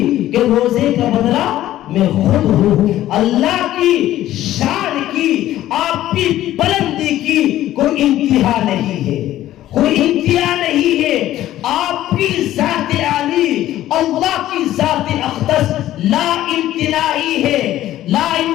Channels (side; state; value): right; quieter; 13.8 dB